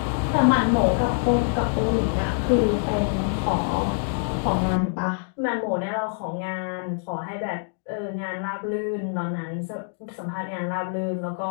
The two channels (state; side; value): silent; right; digital silence